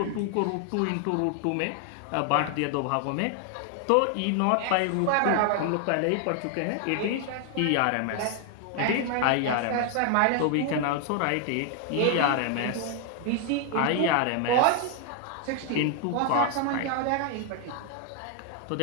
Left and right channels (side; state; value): both; different; correlation 0.00